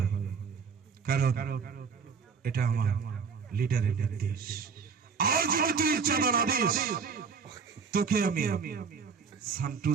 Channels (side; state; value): left; quieter; 5.8 dB